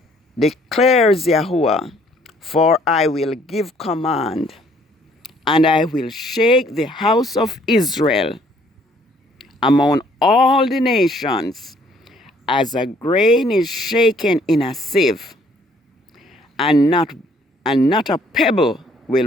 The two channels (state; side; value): normal; both; correlation 0.62